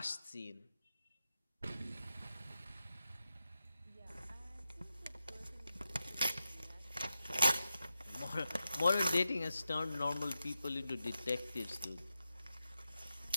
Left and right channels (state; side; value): inverted; both; correlation -0.90